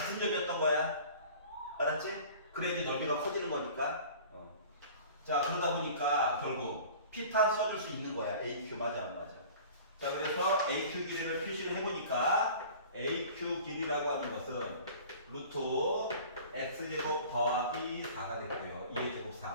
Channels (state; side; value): inverted; both; correlation -0.43